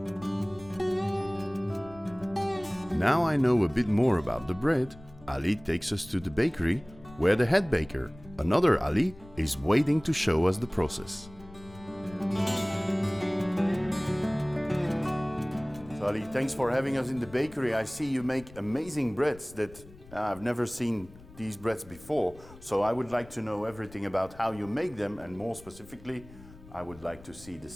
Now I know a bit more about the bread, Ali takes us to the bakery, where the head baker, another Ali, is waiting to show us the process. So Ali, thanks for having us in the bakery. I see you make amazing breads that I've never seen these breads before. So I would like to know everything about how you make them, and more specifically, I would like to see the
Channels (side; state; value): left; noise; rumble, 20 dB below the sound